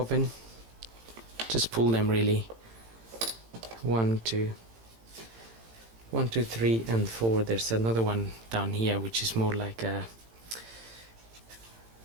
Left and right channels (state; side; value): late; left; 18 ms